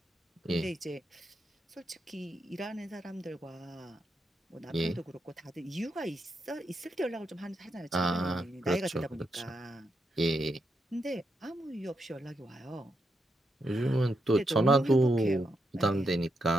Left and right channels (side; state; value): both; normal; correlation 0.82